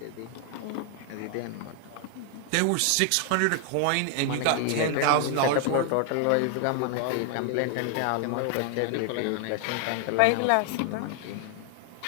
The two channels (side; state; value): both; different; correlation 0.00